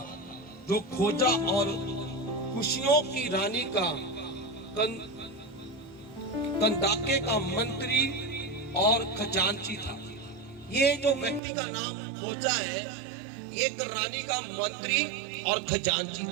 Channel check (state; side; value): drops out; left; at 11.4 s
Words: जो खोजा और खुशियों की रानी का कंदाके का मंत्री और खजांची था। ये जो व्यक्ति का नाम खोजा है, एक रानी का मंत्री और खजांची